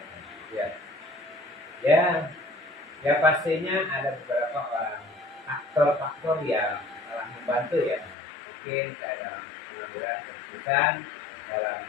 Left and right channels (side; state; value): right; drops out; at 8.2 s